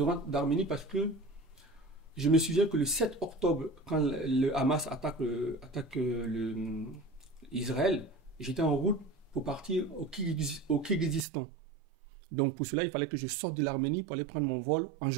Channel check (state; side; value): drops out; left; at 11.2 s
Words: rentre d'Arménie parce que je me souviens que le 7 octobre, quand le Hamas attaque Israël, j'étais en route pour partir au Kirghizistan. Donc pour cela, il fallait que je sorte de l'Arménie pour aller prendre mon vol en